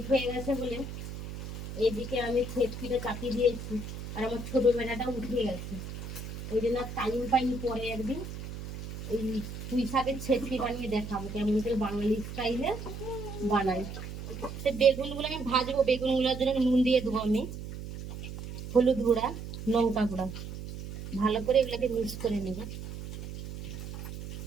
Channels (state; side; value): noise; right; hum, 9 dB below the sound